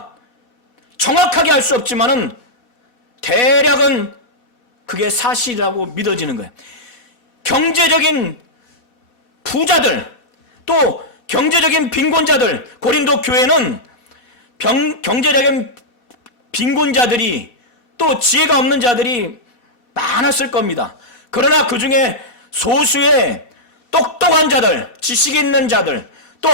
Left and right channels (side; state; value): right; late; 2.7 ms